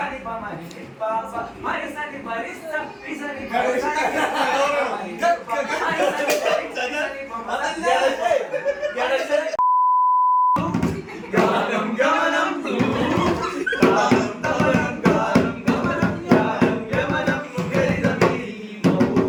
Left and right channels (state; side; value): identical; both; correlation 1.00